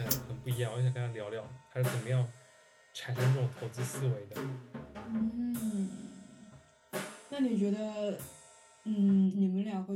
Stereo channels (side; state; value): both; identical; correlation 1.00